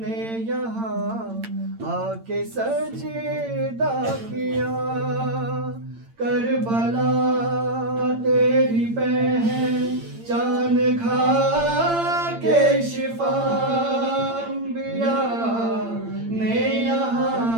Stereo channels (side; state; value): left; late; 8.8 ms